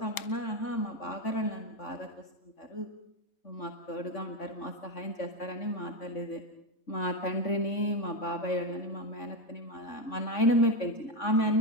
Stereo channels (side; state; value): right; late; 3.5 ms